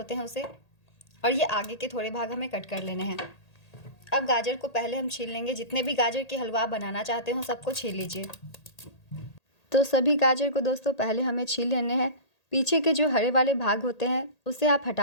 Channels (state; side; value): late; right; 1.8 ms